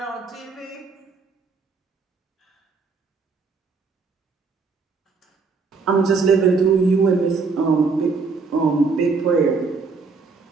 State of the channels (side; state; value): left; quieter; 4.6 dB